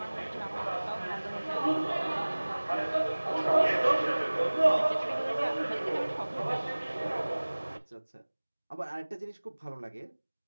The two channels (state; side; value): inverted; both; correlation -1.00